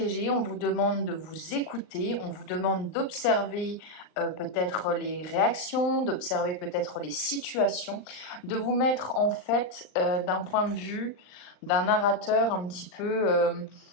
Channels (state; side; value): late; right; 39 ms